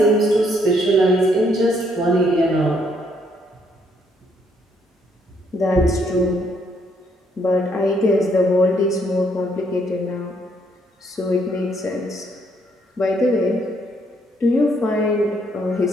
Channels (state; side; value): normal; both; correlation 0.70